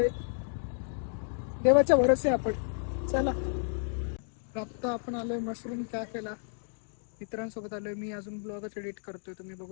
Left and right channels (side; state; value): right; silent; digital silence